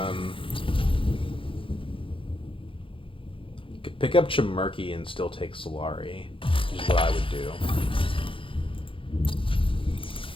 Could pick up Chimerki and still take Solari, which is what I would do.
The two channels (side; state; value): right; late; 0.25 ms